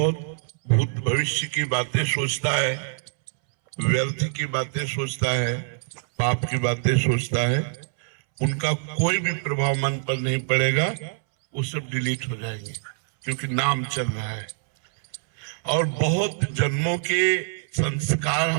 भूत भविष्य की बातें सोचता है, व्यर्थ की बातें सोचता है, पाप की बातें सोचता है, उनका कोई भी प्रभाव मन पर नहीं पड़ेगा। वो सब डिलीट हो जाएंगे क्योंकि नाम चल रहा है। और बहुत जन्मों के संस्कार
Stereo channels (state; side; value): silent; left; 62 dB below the other